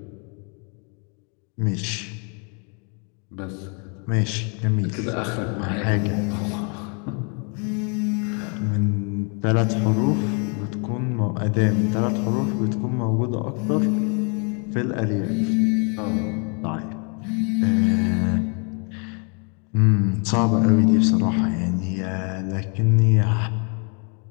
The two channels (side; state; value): right; quieter; 36.9 dB